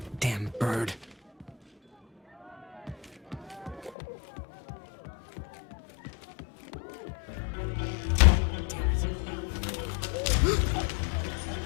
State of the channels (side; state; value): right; drops out; at 4.0 s